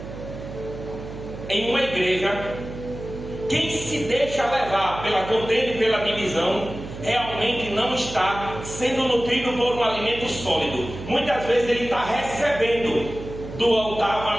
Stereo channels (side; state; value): right; noise; hum, 11 dB below the sound